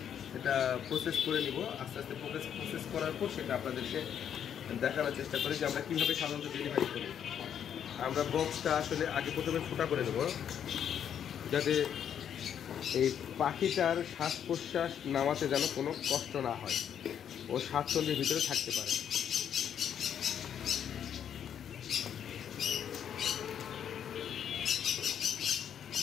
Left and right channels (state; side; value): quieter; right; 8.9 dB